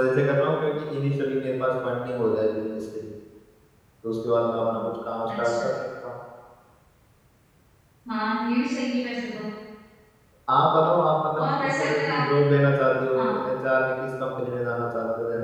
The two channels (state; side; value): identical; both; correlation 1.00